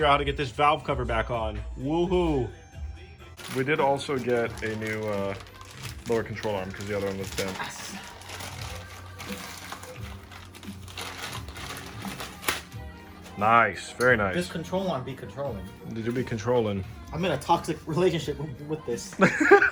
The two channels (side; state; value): both; identical; correlation 1.00